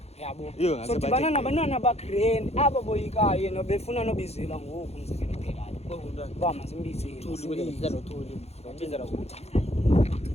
yabo so dibana nabantwana bagrand aba boyikayo yena befuna nobizela ngoku umzekelo phelayo uba masimbizele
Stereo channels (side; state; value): right; late; 0.31 ms